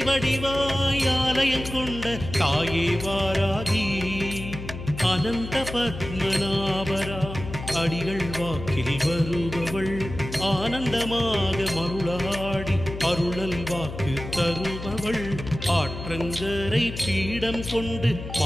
வடிவாய் ஆலயம் கொண்ட தாயே வாராகி அனந்த பத்மநாபரா அடிகள் வாக்கில் வருபவள் ஆனந்தமாக மருளாடி அருளல் வாக்கு தருபவள் ஆற்றங்கரை பீடம் கொண்டு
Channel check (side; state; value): left; noise; hum, 9 dB below the sound